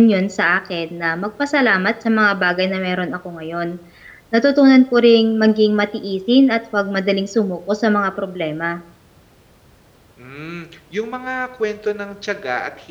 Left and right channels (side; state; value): both; identical; correlation 1.00